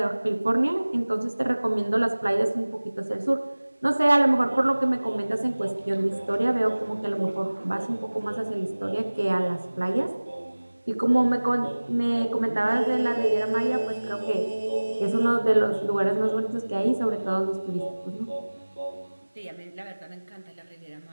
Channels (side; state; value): both; inverted; correlation -1.00